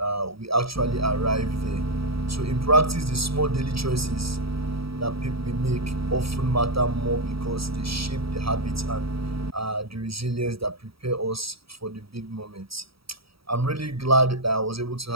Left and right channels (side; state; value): left; late; 0.76 ms